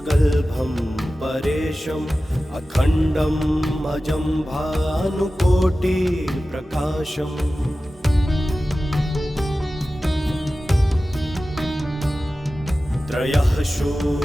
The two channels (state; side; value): normal; both; correlation 0.95